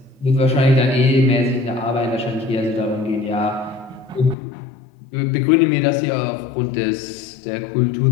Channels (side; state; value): right; drops out; at 4.4 s